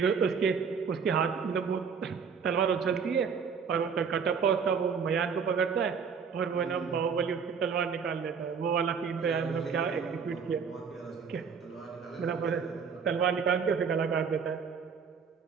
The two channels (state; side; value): quieter; left; 6.2 dB